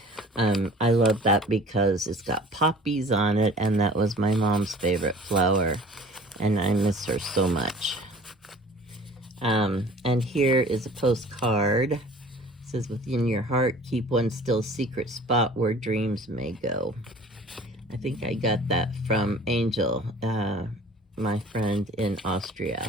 I love that because it's got poppies on it, and that was my mom's favorite flower, and I miss her so much. And here is a postcard. It says, within your heart, keep one still secret spot where dreams may go. I think I got that from Angel, my friend in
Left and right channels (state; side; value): normal; both; correlation 0.46